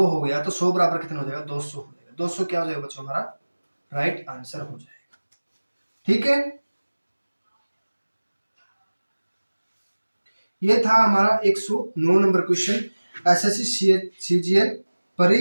हो गया, तो 100 बराबर कितना हो जाएगा 200 हो जाएगा। 200 क्या हो जाएगा बच्चों हमारा राइट आंसर हो जाएगा। ठीक है, ये था हमारा 109 नंबर क्वेश्चन एसएससी सीजीएल परी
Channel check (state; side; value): inverted; both; correlation -1.00